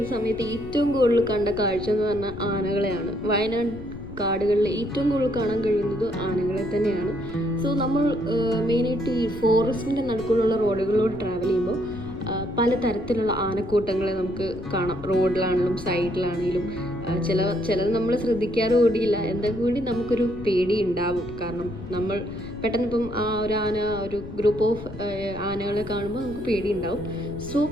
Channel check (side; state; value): left; noise; rumble, 14 dB below the sound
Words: സമയത്ത് ഏറ്റവും കൂടുതൽ കണ്ട കാഴ്ച എന്ന് പറഞ്ഞാൽ ആനകളെയാണ്. വയനാട് കാടുകളിൽ ഏറ്റവും കൂടുതൽ കാണാൻ കഴിയുന്നത് ആനകളെ തന്നെയാണ്. സോ നമ്മൾ മെയിനായിട്ട് ഈ ഫോറസ്റ്റിൻ്റെ നടുക്കുള്ള റോഡുകളിലൂടെ ട്രാവൽ ചെയ്യുമ്പോൾ പലതരത്തിലുള്ള ആനക്കൂട്ടങ്ങളെ നമുക്ക് കാണാം. റോഡിലാണെങ്കിലും സൈഡിലാണെങ്കിലും ചിലത് നമ്മൾ ശ്രദ്ധിക്കാറ് കൂടിയില്ല, എന്നാൽ കൂടി നമുക്കൊരു പേടി ഉണ്ടാവും. കാരണം നമ്മൾ പെട്ടെന്ന് ഇപ്പം ഒരു ഗ്രൂപ്പ് ഓഫ് ആനകളെ കാണുമ്പോൾ നമുക്ക് പേടി ഉണ്ടാവും. സോ